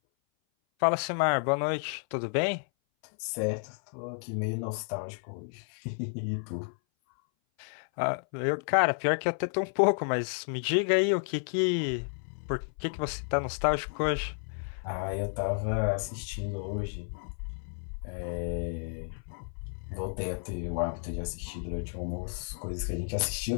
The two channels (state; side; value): silent; right; 57 dB below the other